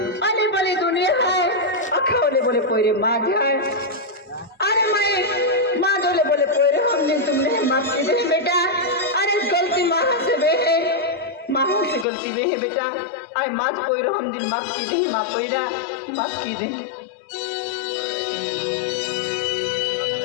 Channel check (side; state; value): right; drops out; at 12.1 s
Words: अली बली दुनिया है अखोले बोले पोरे माँ है अरे मैं माँ जोले बोले पोरे हमने तुमने माफ की दे बेटा अरे गलती माँ से बे है माँ से गलती बे है बेटा आए माँ पोरो हम दिन माफ की दे माँ पोरा माफ की दे